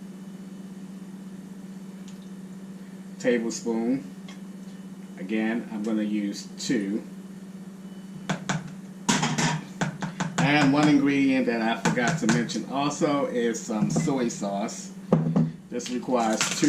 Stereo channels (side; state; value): both; identical; correlation 1.00